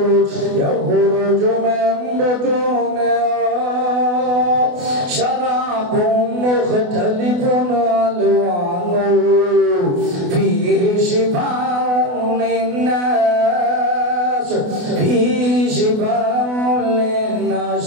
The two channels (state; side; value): late; left; 28 ms